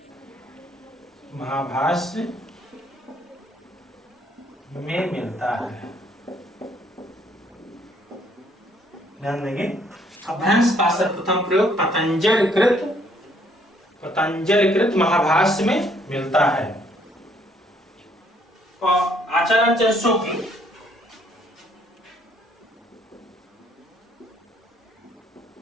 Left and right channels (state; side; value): normal; both; correlation 0.66